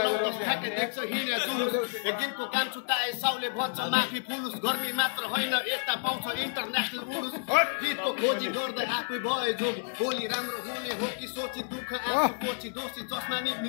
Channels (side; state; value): right; silent; digital silence